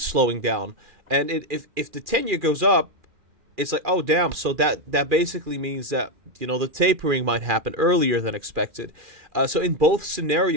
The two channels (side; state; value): left; late; 2.4 ms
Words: slowing down. And if the 10-year goes up, it's like, oh, damn. So that basically means that, the tapering might happen earlier than expected. So in both